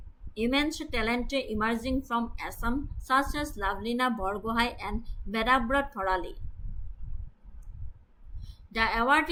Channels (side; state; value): both; identical; correlation 1.00